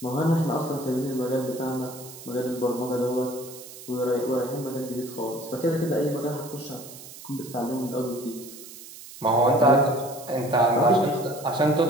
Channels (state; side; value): noise; right; hiss, 16 dB below the sound